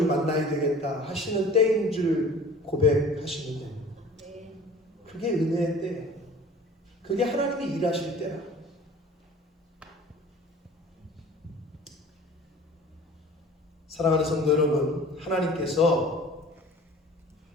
만나야 되겠다 하시는 때인 줄 고백하시는 겁니다. 그게 은혜의 때예요. 그게 하나님이 일하실 때라. 사랑하는 성도 여러분, 하나님께서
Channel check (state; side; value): normal; both; correlation 0.45